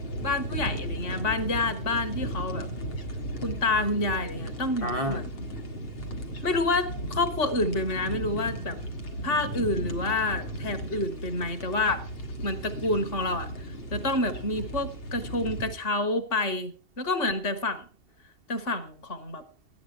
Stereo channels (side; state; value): right; late; 2.7 ms